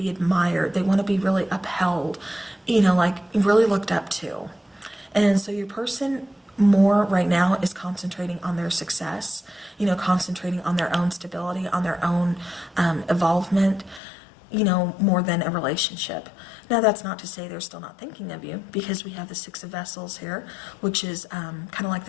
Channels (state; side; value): drops out; right; at 14.0 s